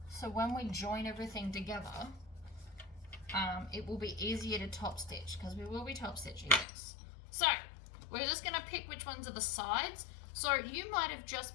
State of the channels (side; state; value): right; drops out; at 6.7 s